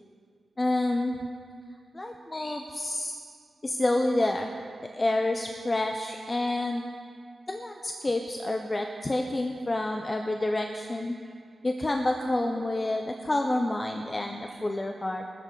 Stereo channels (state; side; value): normal; both; correlation 0.97